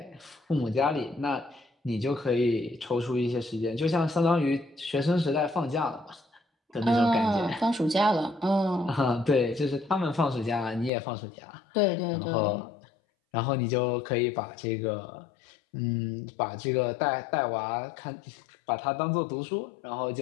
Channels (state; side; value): drops out; right; at 10.9 s